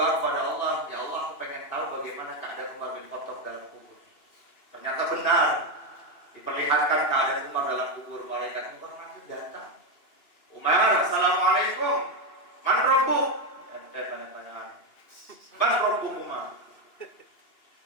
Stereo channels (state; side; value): late; right; 2.8 ms